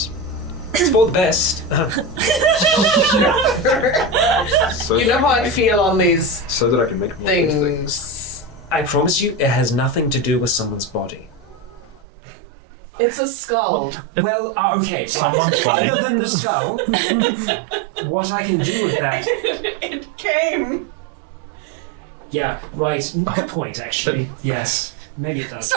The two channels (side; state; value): left; drops out; at 12.0 s